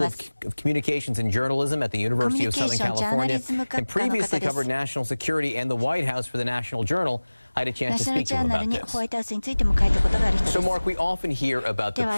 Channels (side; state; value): both; inverted; correlation -1.00